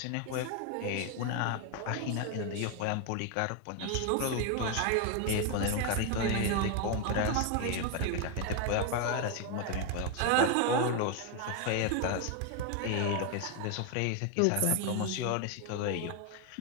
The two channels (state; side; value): different; both; correlation 0.01